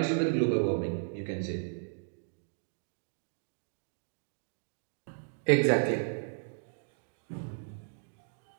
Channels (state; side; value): silent; left; digital silence